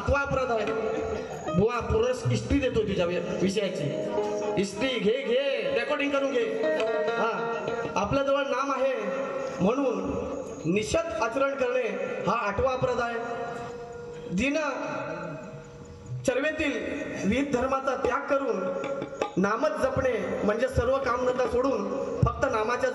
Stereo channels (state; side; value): identical; both; correlation 1.00